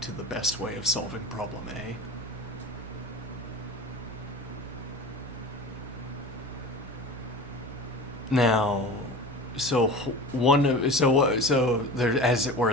to the best way of solving problem A. Now, so there, as it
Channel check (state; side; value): normal; both; correlation 0.34